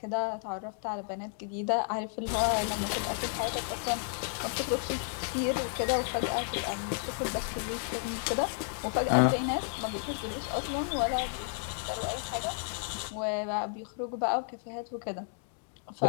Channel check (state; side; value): silent; right; 56 dB below the other